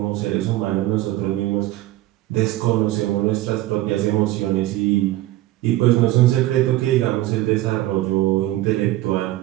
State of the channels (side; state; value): left; quieter; 16.2 dB